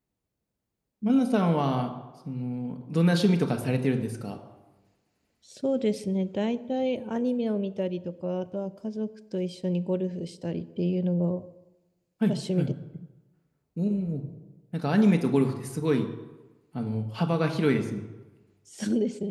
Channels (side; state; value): both; identical; correlation 1.00